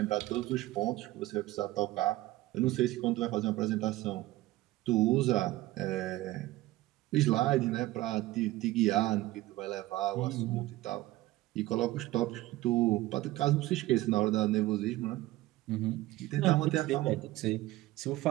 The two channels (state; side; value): quieter; left; 17.4 dB